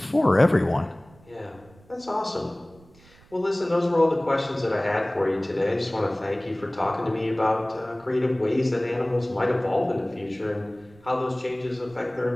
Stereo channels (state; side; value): noise; right; rumble, 26 dB below the sound